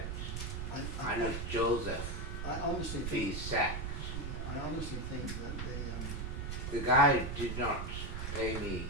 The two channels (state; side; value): noise; right; rumble, 4 dB below the sound